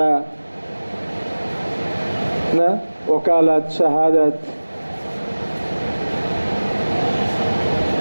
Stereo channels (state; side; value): inverted; both; correlation -1.00